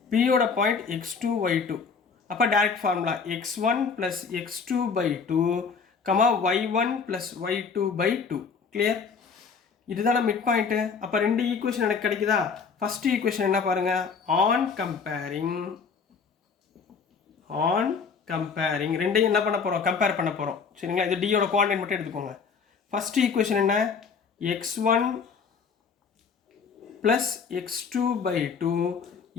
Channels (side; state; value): right; quieter; 5.7 dB